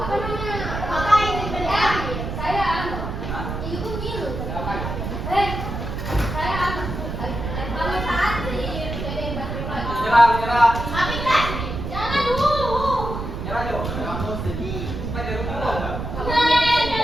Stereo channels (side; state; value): right; noise; rumble, 5 dB below the sound